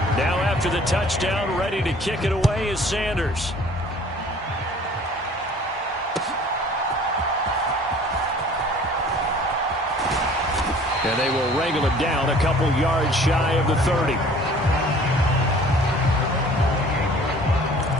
After the touchdown, ready to kick it away is Sanders. And they will wrangle it down a couple yards shy of the 30.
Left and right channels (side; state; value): both; normal; correlation 0.51